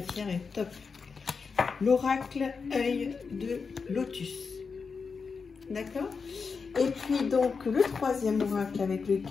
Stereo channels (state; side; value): quieter; right; 5.2 dB